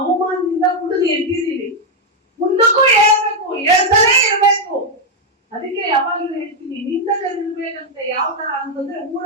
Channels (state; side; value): normal; both; correlation 0.01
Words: ಅವಮಾನದಿಂದ ಕುಡಿದು ಎದ್ದಿದ್ದೀನಿ. ಮುಂದಕ್ಕೂ ಹೇಳ್ಬೇಕು, ಹೇಳ್ತಾನೆ ಇರ್ಬೇಕು. ಅದಕ್ಕೆ ಯಾವಾಗಲೂ ಹೇಳ್ತೀನಿ, ನಿಂದಕರಿರ್ಬೇಕಂತೆ ಯಾವ ತರ ಅಂತಂದ್ರೆ,